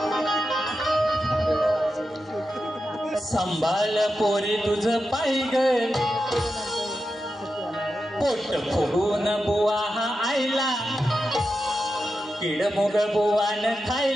संभाळ पोरी तुझ पाय ग, पोट फुगून बुवा हा आईला, किडमुग बुवान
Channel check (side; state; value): both; normal; correlation 0.89